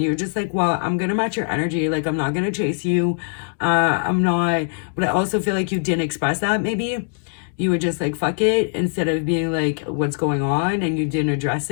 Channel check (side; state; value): right; silent; 65 dB below the other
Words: you're just like, well, I'm going to match your energy. Like, I'm not going to chase you. I'm not. But I also feel like you didn't express that maybe. You were just like, fuck it, instead of being like, what's going on? And you didn't address